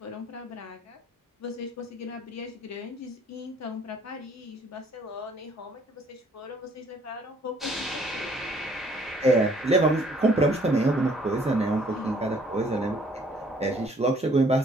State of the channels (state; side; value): normal; both; correlation 0.61